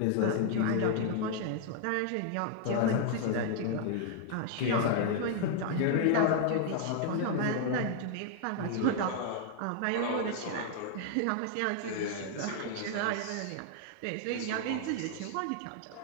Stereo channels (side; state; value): both; different; correlation 0.00